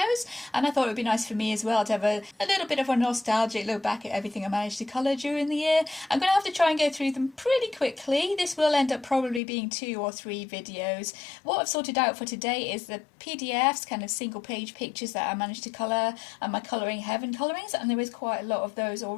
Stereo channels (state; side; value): drops out; right; at 9.4 s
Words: And I thought it would be nice for me as well to have a little bit of a nostalgic look back at everything I managed to colour during the year. I'm going to have to try and go through them pretty quickly. This will end up probably being 2 or 3 videos. What I've sorted out for today is the PDFs, kind of single page pictures that I managed to colour, and my Colouring Heaven colourings, and there is quite a lot of those